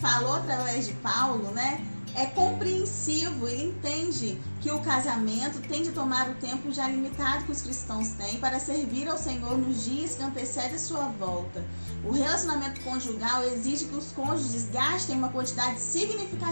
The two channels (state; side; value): inverted; both; correlation -1.00